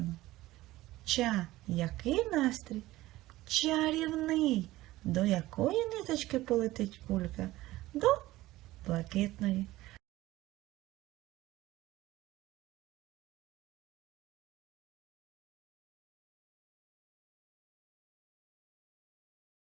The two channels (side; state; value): left; quieter; 17.2 dB